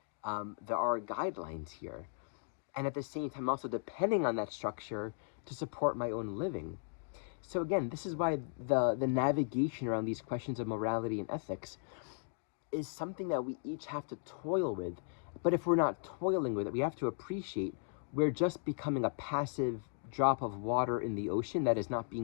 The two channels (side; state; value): right; silent; digital silence